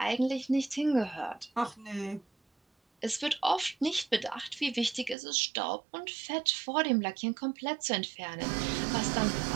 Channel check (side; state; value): left; drops out; at 5.2 s